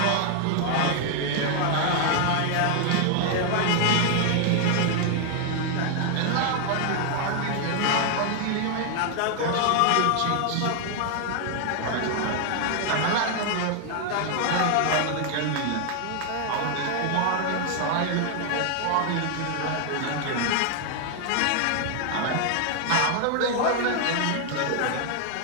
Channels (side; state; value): both; different; correlation 0.00